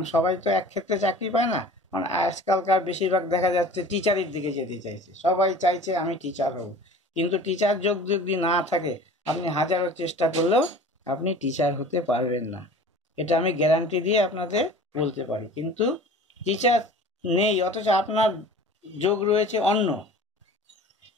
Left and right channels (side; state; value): both; normal; correlation 0.43